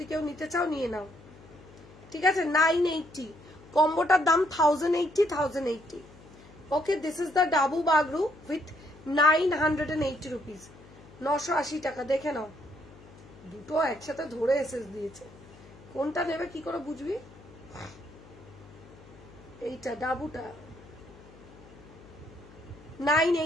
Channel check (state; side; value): noise; left; hum, 22 dB below the sound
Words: কেউ নিতে চাও নিয়ে নাও, ঠিক আছে। 980 কম্বোটার দাম 1080 okay. This is the dabu Bagru with 980 rupees, 980 টাকা। দেখে নাও দুটো একসাথে ধরে এসএস দিয়েছে, কোনটা নেবে কি করে বুঝবি? এইটা ডাবুটা